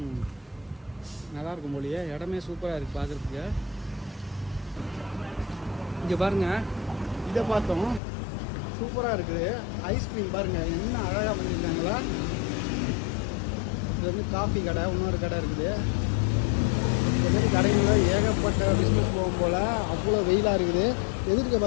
நல்லாயிருக்கும் போலியே, இடமே சூப்பராக இருக்குது பார்க்குறதுக்கு. இங்கே பாருங்கள், இதை பார்த்தோம், சூப்பராக இருக்குது. ஐஸ்கிரீம் பாருங்கள் என்ன அழகாக பண்ணியிருக்காங்களா. இது வந்து காஃபி கடை, இன்னொரு கடை இருக்குது. இந்த மாதிரி கடைகளில் ஏகப்பட்ட பிஸ்னஸ் போகும் போல். அவ்வளோ வெயிலாக இருக்குது. எதிர்க்க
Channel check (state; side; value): drops out; right; at 8.0 s